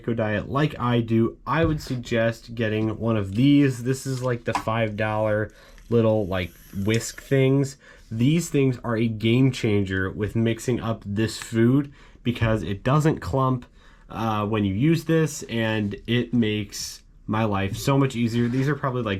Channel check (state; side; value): identical; both; correlation 1.00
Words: diet like I do, I would suggest getting one of these. This is like the $5 little like whisk things. These things are a game changer with mixing up this food because it doesn't clump when you use this, and it makes my life so much easier. These are probably